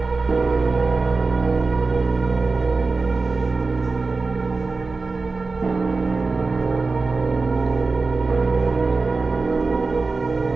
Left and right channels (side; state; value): left; quieter; 3.9 dB